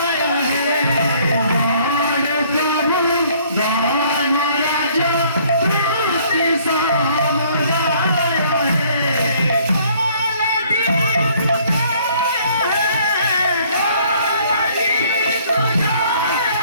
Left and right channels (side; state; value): both; inverted; correlation -0.60